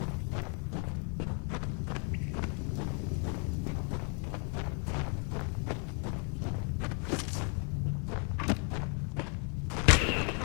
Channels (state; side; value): quieter; right; 38.9 dB